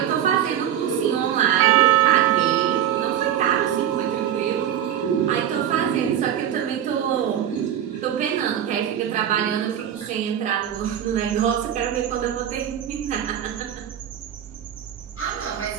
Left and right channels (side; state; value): left; quieter; 10.4 dB